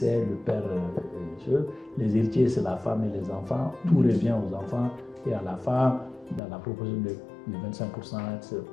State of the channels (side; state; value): right; drops out; at 6.4 s